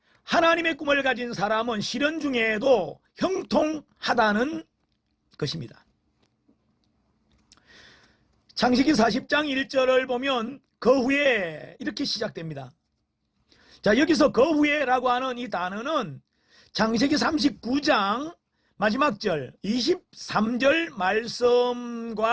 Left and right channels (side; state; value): both; identical; correlation 1.00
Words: 하나님의 꿈을 가진 사람은 시련 중에도 형통하다는 것입니다. 창세기 40장 1절을 보면 그 후에 이렇게 시작됩니다. 자, 여기서 그 후에라고 하는 이 단어는 창세기 39장 마지막 절 23절